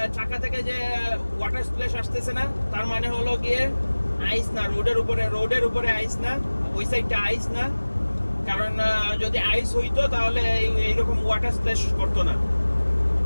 চাকা থেকে যে ওয়াটার স্প্ল্যাশ আসতেছে না, তার মানে হলো গিয়ে আইস না, রোডের উপরে আইস না, ওই সাইডটা আইস না। কারণ যদি আইস হইতো তাহলে এইরকম ওয়াটার স্প্ল্যাশ করতো না।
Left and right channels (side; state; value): both; inverted; correlation -1.00